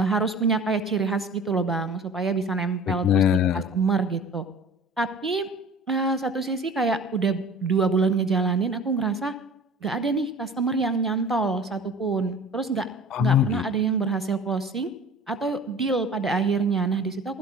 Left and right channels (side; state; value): both; normal; correlation 0.42